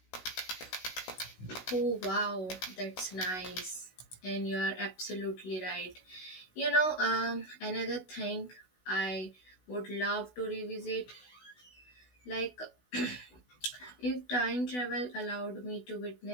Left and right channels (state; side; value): late; right; 16 ms